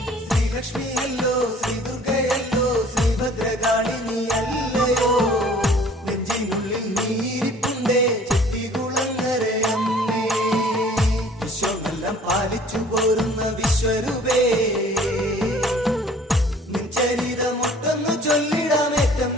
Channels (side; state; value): both; normal; correlation 0.52